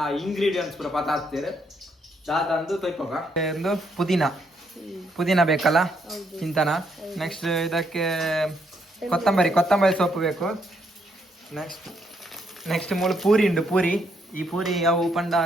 ಇಂಗ್ರೀಡಿಯೆಂಟ್ಸ್ ಪೂರ ಪತ ಹಾಕ್ತೇರೆ ದಾದಂದು ತೊಯ್ಪೋಗ ಒಂದು ಪುದೀನ ಬೇಕಲ್ಲ ಚಿಂತನ ನೆಕ್ಸ್ಟ್ ಇದಕ್ಕೆ ಕೊತ್ತಂಬರಿ ಸೊಪ್ಪು ಬೇಕು ನೆಕ್ಸ್ಟ್ ನೆಕ್ಸ್ಟ್ ಮೂಲ ಪೂರಿ ಉಂಡು ಪೂರಿ ಈ ಪೂರಿ ಅವು ಪಂಡ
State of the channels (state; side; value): normal; both; correlation 0.74